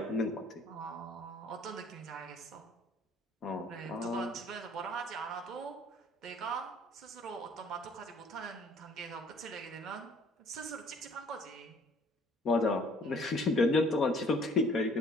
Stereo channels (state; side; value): normal; both; correlation 0.57